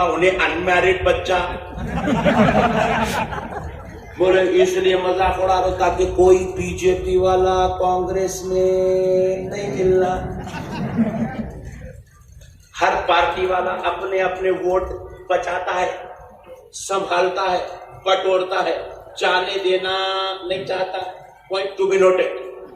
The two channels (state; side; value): identical; both; correlation 1.00